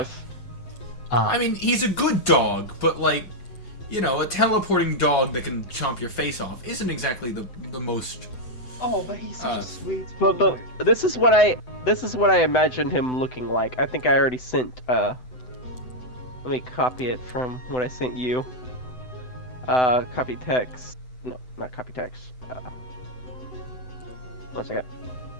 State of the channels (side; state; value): right; late; 7.9 ms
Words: Ah, I mean, he's a good dog, but like, a teleporting dog that can chomp your face off isn't exactly the most. Oh, but he's such a sweet But boy. this is what I imagined him looking like. I think I already sent. Let me copy it from what I sent you. Copy text. No, not copy text. 1 second.